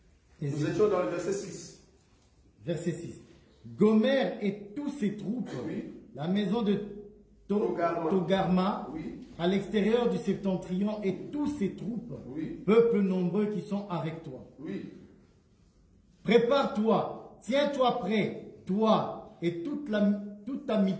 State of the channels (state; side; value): identical; both; correlation 1.00